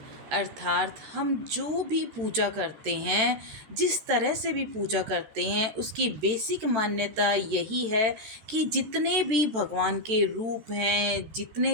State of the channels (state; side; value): late; left; 13 ms